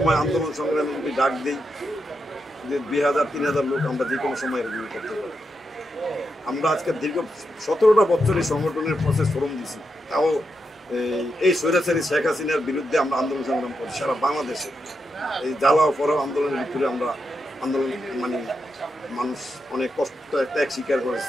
আন্দোলন সংগ্রামে যদি ডাক দিই, যে 2000-3000 লোক আমরা যে কোনো সময় রিভিউ করতে পারি। আমরা আজকে দীর্ঘ 17টা বছর এই সংগঠনের প্রসেস ফরম দিছি, তাও এই স্বৈরাচারী শেখ হাসিনার বিরুদ্ধে আমরা আন্দোলন সংগ্রাম করি সারা বাংলাদেশে। এই জ্বালা পড়াও আন্দোলনের ভিতরে আমরা আন্দোলন, মানে মানুষ অনেক কষ্ট ত্যাগ স্বীকার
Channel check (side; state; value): both; normal; correlation 0.85